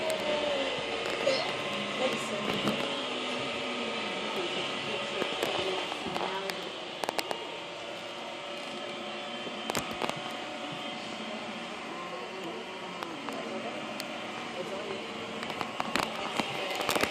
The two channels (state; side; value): identical; both; correlation 1.00